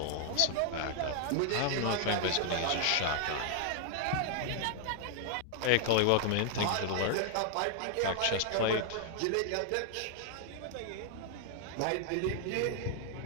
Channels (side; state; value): both; different; correlation 0.00